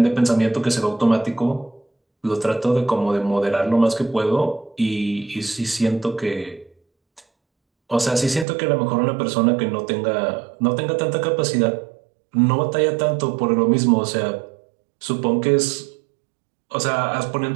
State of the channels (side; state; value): left; drops out; at 8.5 s